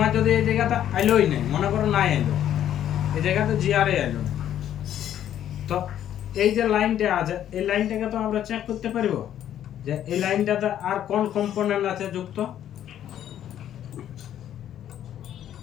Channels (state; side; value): quieter; right; 10.9 dB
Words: যদি এই জায়গাটা আইলোই নেই, মনে করো নাই আইলো, এই জায়গাতে জিআরএ আইলো, তো এই যে লাইনটা আছে এই লাইনটাকে তো আমরা চেক করতে পারবো যে এই লাইনটাতে আর কোন কম্পোনেন্ট আছে যুক্ত।